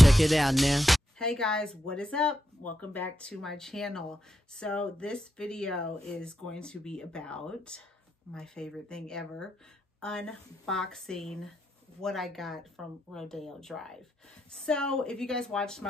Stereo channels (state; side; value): normal; both; correlation 0.84